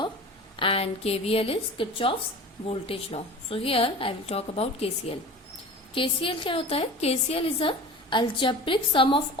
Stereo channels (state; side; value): normal; both; correlation 0.36